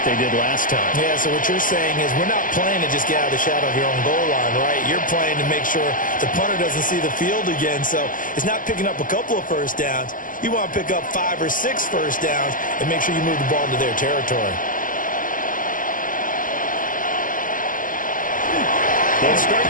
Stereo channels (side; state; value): right; late; 0.39 ms